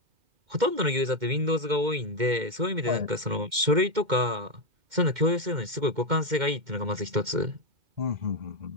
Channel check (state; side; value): late; left; 2.1 ms